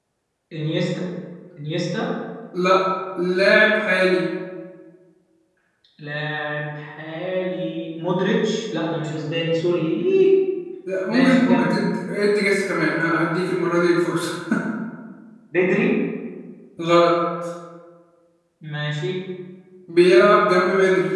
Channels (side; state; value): both; identical; correlation 1.00